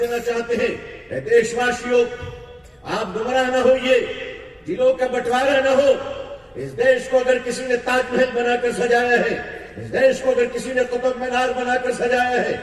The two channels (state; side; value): identical; both; correlation 1.00